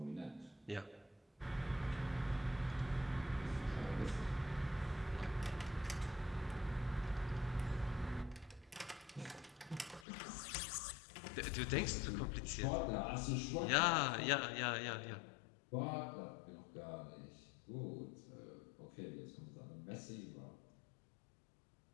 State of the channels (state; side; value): drops out; right; at 10.1 s